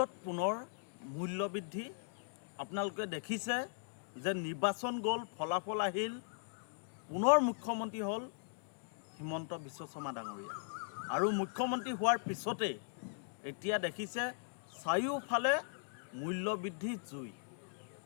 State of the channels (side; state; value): right; silent; digital silence